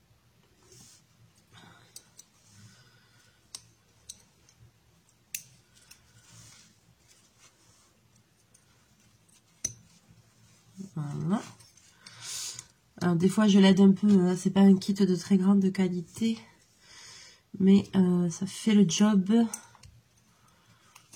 Voilà. Alors des fois je l'aide un peu, c'est pas un kit de très grande qualité, mais ça fait le job.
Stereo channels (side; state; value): both; identical; correlation 1.00